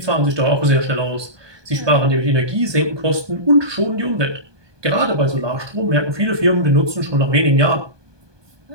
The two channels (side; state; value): left; late; 1.2 ms